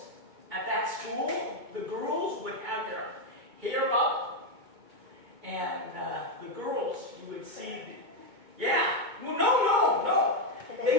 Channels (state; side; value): late; left; 2.2 ms